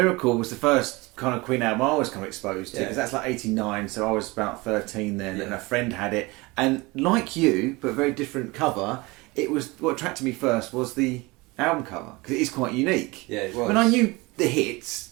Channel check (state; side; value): quieter; left; 23.7 dB